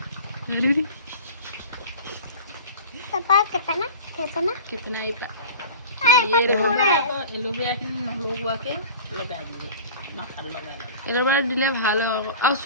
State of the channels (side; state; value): both; inverted; correlation -0.38